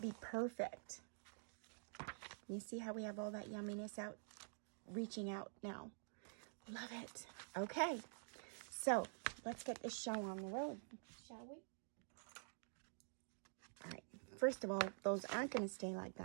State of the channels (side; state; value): left; silent; digital silence